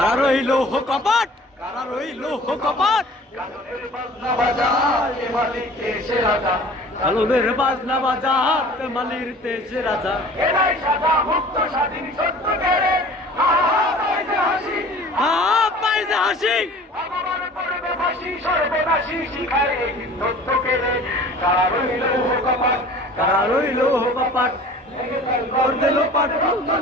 রইল কপাট, কারা রইল কপাট, কাননের বাজনা বাজায় এ মালিক এসে রাজা কালুদের বাজনা বাজার মালির তেজে রাজা। এরাই সাদা মুক্ত স্বাধীন সত্য কেড়ে হাসি পাইছে হাসি ভগবান করবে ফাঁসি সর্বনাশী শিখায় এই হিন্দুত্ব কেড়ে কারা রইল কপাট কারা রইল কপাট, ওর দিল পাট রক্ত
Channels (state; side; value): normal; both; correlation 0.45